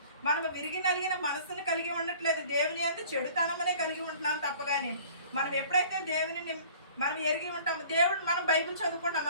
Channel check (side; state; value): both; inverted; correlation -0.49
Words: మనం విరిగి నలిగిన మనసుని కలిగి ఉండట్లేదు, దేవుని యందు చెడుతనమనే కలిగి ఉంటున్నాం తప్ప కానీ మనం ఎప్పుడైతే దేవుని మనం ఎరిగి ఉంటాము, దేవుడు మనం బైబిల్ చదువుకుంటాం